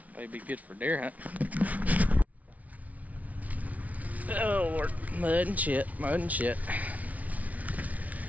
Maybe good for deer hunt. Oh Lord, mud and shit, mud and shit.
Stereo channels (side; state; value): left; late; 0.071 ms